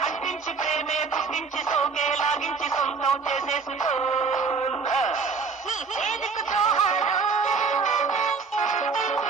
అంటించి ప్రేమే పుట్టించి సోకే లాగించి సొంతం చేసేసుకో నీ చేదుకు జోహారు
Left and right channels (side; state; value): left; quieter; 5.0 dB